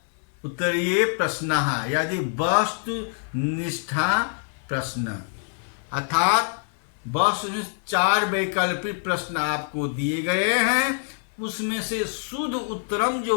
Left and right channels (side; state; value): right; silent; 62 dB below the other